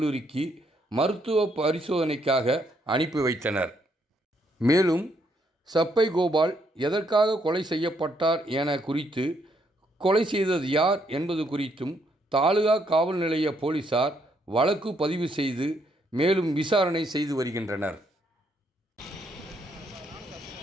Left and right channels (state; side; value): normal; both; correlation 0.73